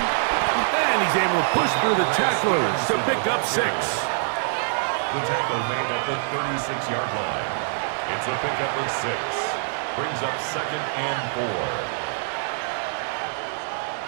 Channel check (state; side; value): silent; left; digital silence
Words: And he's able to push through the tacklers to pick up 6. The tackle made at the 36-yard line. It's a pickup of 6. Brings up second and 4.